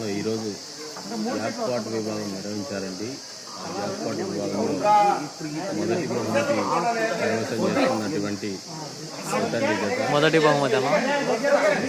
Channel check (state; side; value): identical; both; correlation 1.00